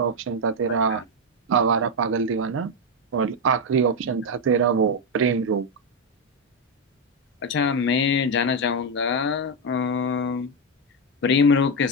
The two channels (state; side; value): normal; both; correlation 0.05